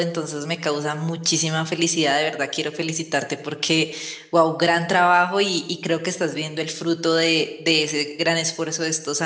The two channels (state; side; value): identical; both; correlation 1.00